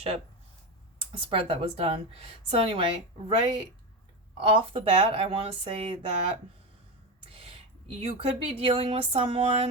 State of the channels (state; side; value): normal; both; correlation 0.18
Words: spread that was done. So anyway, right off the bat, I want to say that you could be dealing with